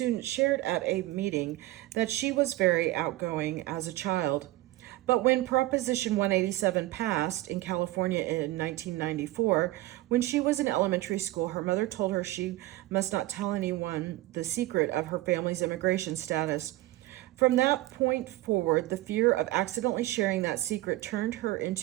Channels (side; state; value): left; quieter; 17.4 dB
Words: shared at a meeting that she was very outgoing as a child. But when Proposition 187 passed in California in 1994, when she was in elementary school, her mother told her she must not tell anyone the secret of her family's immigration status. From that point forward, the fear of accidentally sharing that secret turned her